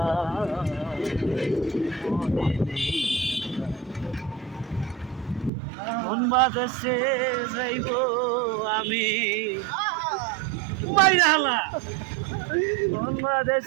মন বাদেশে যাইব আমি বাইরালা, মন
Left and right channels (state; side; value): drops out; left; at 5.5 s